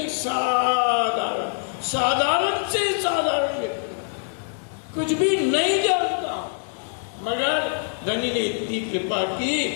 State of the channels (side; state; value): right; silent; 58 dB below the other